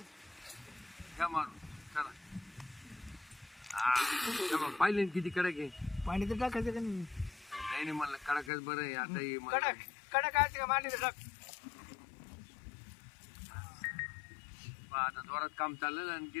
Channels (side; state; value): right; drops out; at 8.5 s